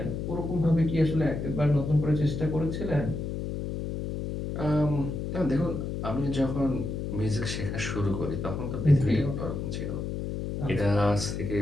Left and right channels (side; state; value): left; noise; hum, 4 dB below the sound